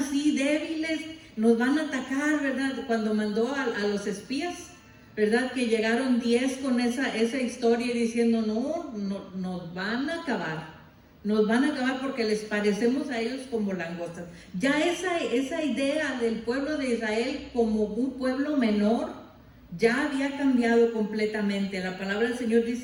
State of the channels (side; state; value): both; identical; correlation 1.00